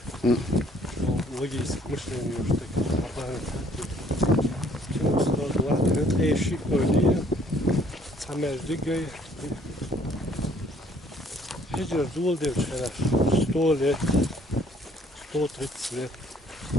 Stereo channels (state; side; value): normal; both; correlation 0.61